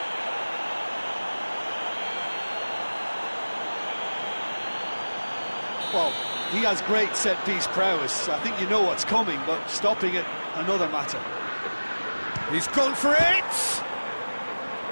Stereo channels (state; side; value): inverted; both; correlation -1.00